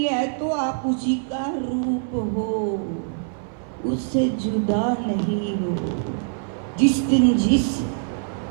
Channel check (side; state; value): left; silent; 58 dB below the other